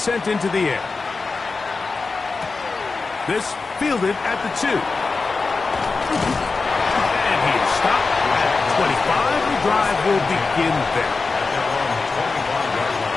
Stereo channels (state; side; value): quieter; right; 4.2 dB